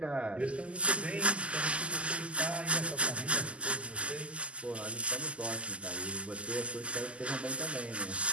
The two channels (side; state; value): left; late; 0.057 ms